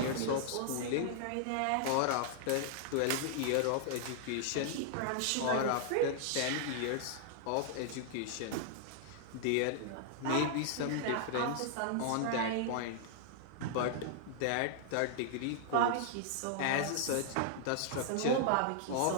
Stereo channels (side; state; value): both; different; correlation -0.01